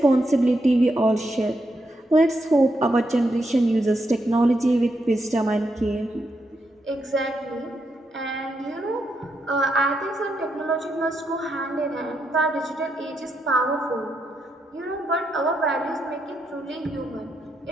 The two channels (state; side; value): normal; both; correlation 0.81